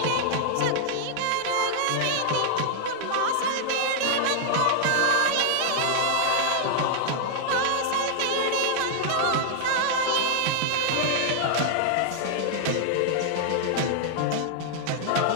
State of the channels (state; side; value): different; both; correlation -0.01